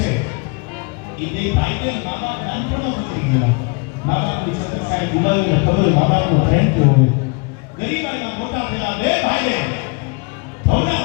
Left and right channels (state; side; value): quieter; right; 30.5 dB